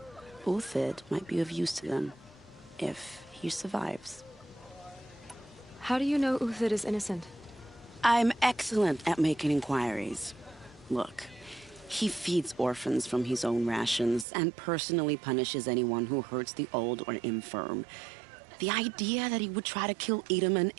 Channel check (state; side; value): drops out; left; at 14.2 s